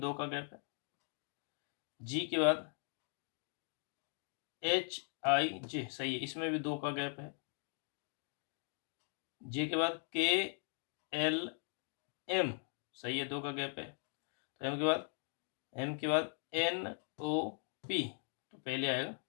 का गैप है। जी के बाद HIJ, सही है, इसमें भी 2 का गैप है। जे के बाद KLM, सही है, 2 का गैप है। तो एम के बाद NOP, तो पहले आएगा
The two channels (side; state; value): right; silent; 51 dB below the other